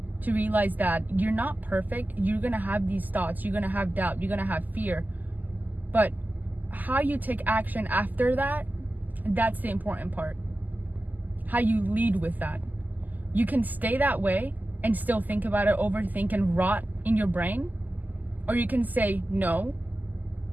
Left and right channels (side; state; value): left; late; 0.083 ms